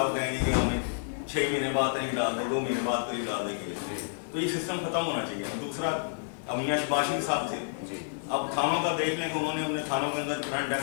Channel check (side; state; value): right; silent; digital silence